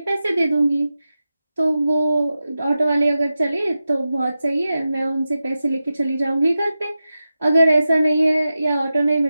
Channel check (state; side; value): inverted; both; correlation -0.93